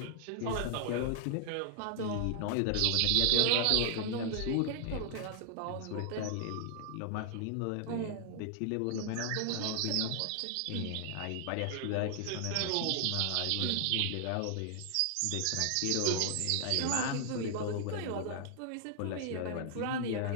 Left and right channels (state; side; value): different; both; correlation 0.00